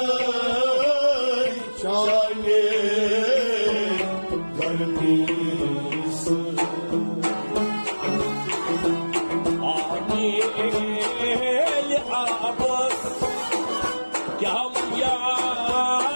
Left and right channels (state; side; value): inverted; both; correlation -1.00